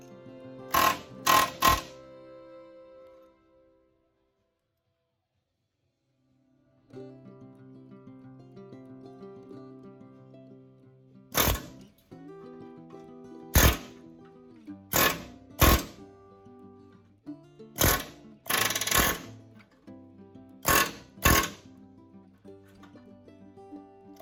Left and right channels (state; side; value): identical; both; correlation 1.00